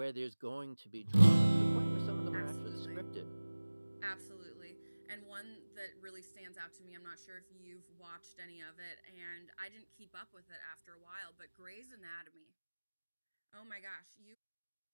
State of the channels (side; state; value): both; inverted; correlation -1.00